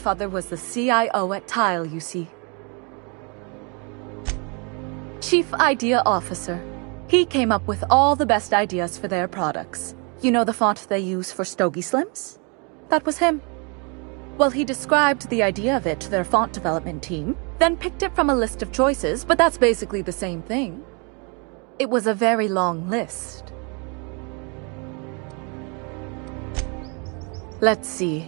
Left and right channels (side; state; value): left; quieter; 34.1 dB